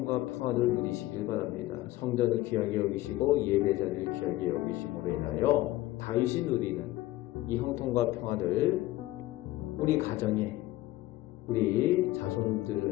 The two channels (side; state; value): right; quieter; 16.9 dB